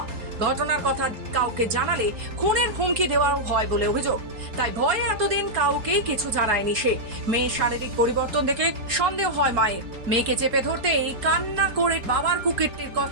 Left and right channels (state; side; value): late; left; 4.4 ms